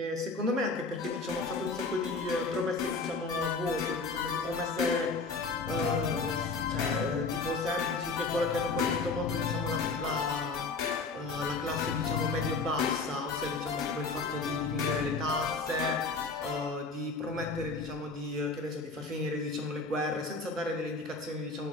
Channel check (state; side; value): quieter; right; 3.9 dB